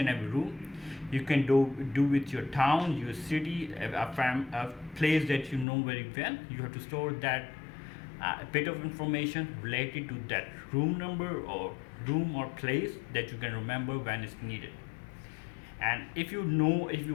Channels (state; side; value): drops out; right; at 5.7 s